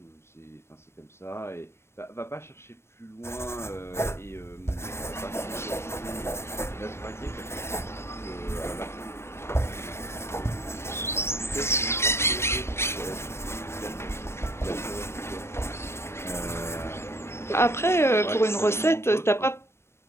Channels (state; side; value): late; right; 0.12 ms